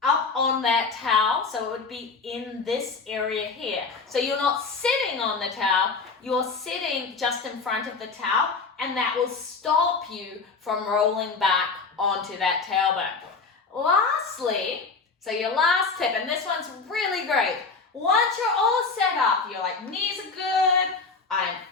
up on that towel, so it would be in this area here. So you're not sitting on the towel, you're sitting just in front of the towel, and that will stop you from rolling back onto that tailbone. Lastly, so your last tip, and this one's really great, Once you're all set up, you're like, knees are good, I'm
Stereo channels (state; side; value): quieter; right; 4.5 dB